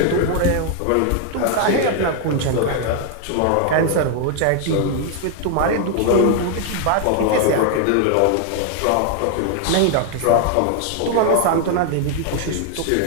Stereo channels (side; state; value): both; different; correlation 0.00